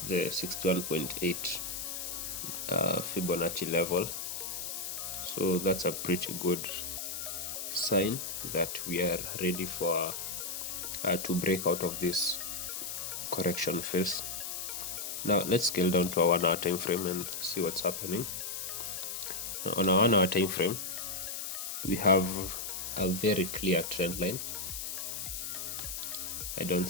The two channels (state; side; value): noise; left; hiss, 5 dB below the sound